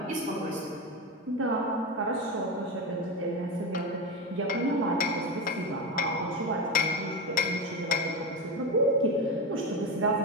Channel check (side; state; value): both; normal; correlation 0.17